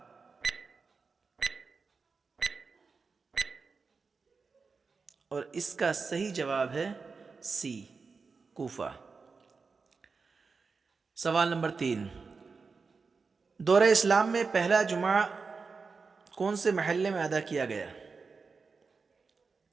اور اس کا صحیح جواب ہے سی کوفہ۔ سوال نمبر 3، دور اسلام میں پہلا جمعہ کون سے محلے میں ادا کیا گیا؟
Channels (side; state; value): left; quieter; 4.7 dB